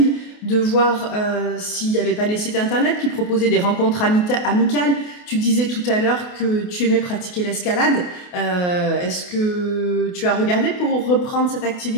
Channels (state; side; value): late; right; 28 ms